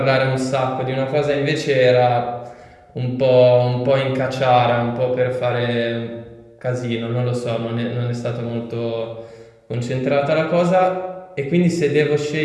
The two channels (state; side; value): identical; both; correlation 1.00